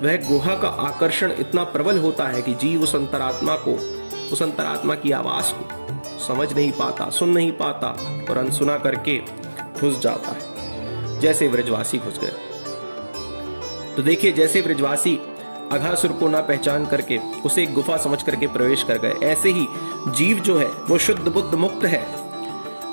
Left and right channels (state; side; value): inverted; both; correlation -1.00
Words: वह गुहा का आकर्षण इतना प्रबल होता है कि जीव उस अंतरात्मा की आवाज को समझ नहीं पाता, सुन नहीं पाता और अनसुना करके घुस जाता है, जैसे ब्रजवासी घुस गए। तो देखिए, जैसे ब्रजवासी अघासुर को ना पहचान करके उसे एक गुफा समझ करके प्रवेश कर गए, ऐसे ही जीव जो है वो शुद्ध बुद्ध मुक्त है,